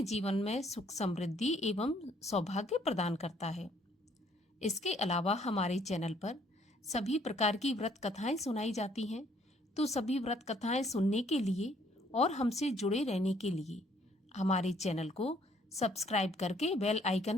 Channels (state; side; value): normal; both; correlation 0.64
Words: जीवन में सुख समृद्धि एवं सौभाग्य प्रदान करता है। इसके अलावा हमारे चैनल पर सभी प्रकार की व्रत कथाएं सुनाई जाती हैं, तो सभी व्रत कथाएं सुनने के लिए और हमसे जुड़े रहने के लिए हमारे चैनल को सब्सक्राइब करके बेल